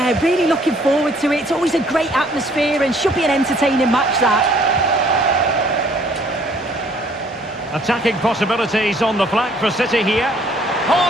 really looking forward to it. It's always a great atmosphere and should be an entertaining match, that. Attacking possibilities on the flank for City here.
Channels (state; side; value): normal; both; correlation 0.60